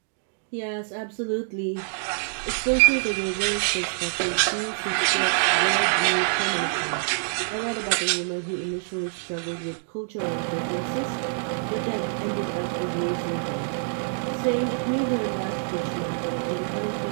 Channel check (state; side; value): silent; left; digital silence